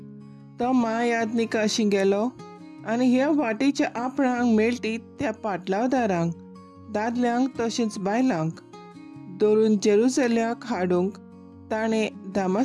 तो महायाज्ञिका गेलो आनी ह्या वाटेच्या आपणांक मेळटी त्या पाटलावदारांक, दादल्यांक तशेंच बायलांक धरून जेरुसल्याक हाडूंक ताणें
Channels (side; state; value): both; identical; correlation 1.00